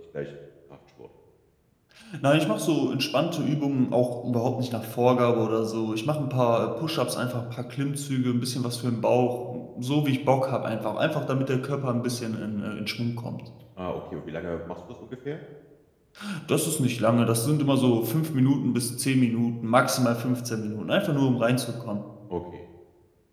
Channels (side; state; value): both; identical; correlation 1.00